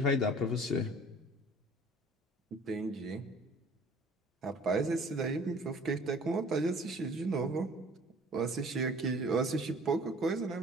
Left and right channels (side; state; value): both; normal; correlation 0.50